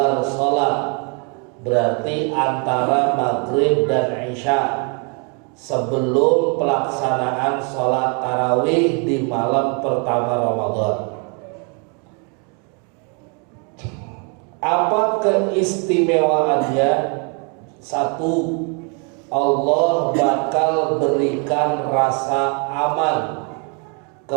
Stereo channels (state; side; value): quieter; left; 36.4 dB